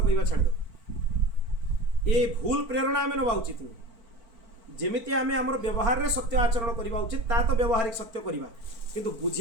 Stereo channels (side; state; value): left; late; 4.4 ms